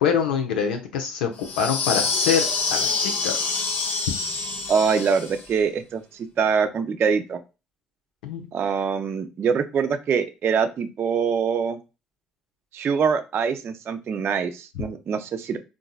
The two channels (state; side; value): normal; both; correlation 0.44